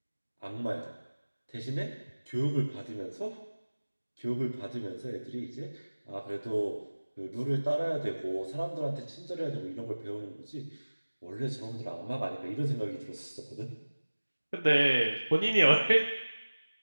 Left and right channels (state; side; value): inverted; both; correlation -1.00